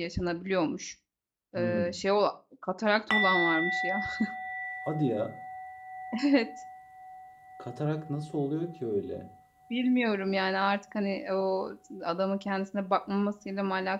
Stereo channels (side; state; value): both; identical; correlation 1.00